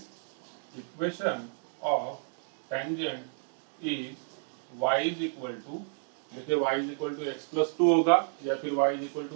equation of tangent is y is equal to, देखिए y is equal to X plus two होगा या फिर y is equal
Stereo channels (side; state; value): left; silent; digital silence